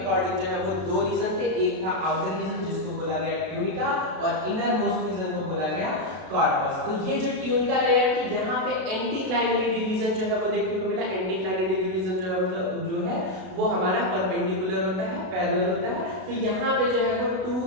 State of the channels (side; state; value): left; late; 32 ms